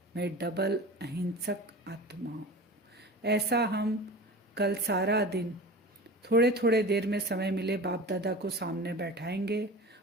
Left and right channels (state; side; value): normal; both; correlation 0.34